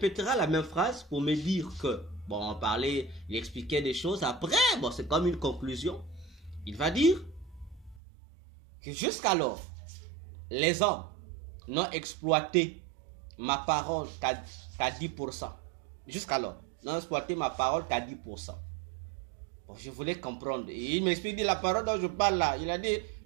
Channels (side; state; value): left; drops out; at 8.0 s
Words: la même phrase pour me dire que, bon, on parlait, il expliquait des choses. Après, bon, c'est comme une conclusion. Il va dire que jusqu'alors, les hommes n'ont exploité ma parole qu'à 10%. Jusqu'alors, n'ont exploité ma parole qu'à 10%. Bon, je voulais comprendre. Et il m'explique la parole dont je parle là. Il a dit